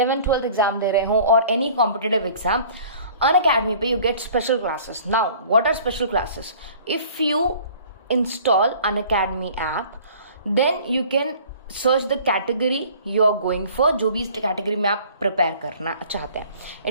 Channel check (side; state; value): both; inverted; correlation -0.49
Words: एग्जाम दे रहे हो और एनी कॉम्पिटिटिव एग्जाम, Unacademy पे you get special classes. Now, what are special classes? If you install Unacademy app, then you can search the category you are going for, जो भी इस category में आप prepare करना चाहते हैं.